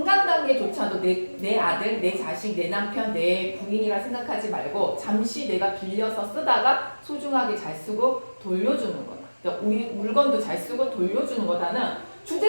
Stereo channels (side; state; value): both; inverted; correlation -1.00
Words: 내 아들, 내 자식, 내 남편, 내 부인이라 생각하지 말고 잠시 내가 빌려서 쓰다가 소중하게 잘 쓰고 돌려주는 거다. 그러니까 우리 물건도 잘 쓰고 돌려주는 거다는